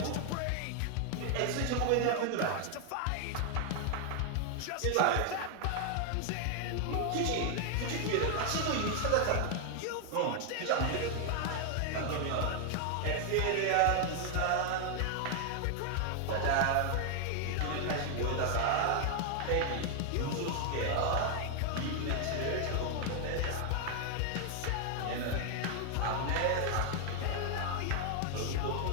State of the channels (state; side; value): different; both; correlation 0.00